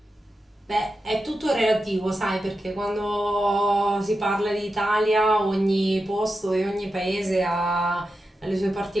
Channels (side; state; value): both; normal; correlation 0.90